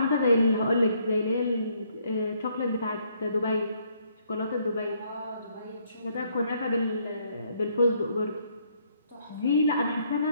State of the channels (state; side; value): inverted; both; correlation -0.69